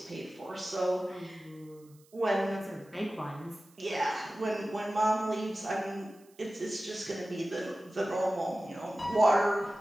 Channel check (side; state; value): right; noise; hiss, 29 dB below the sound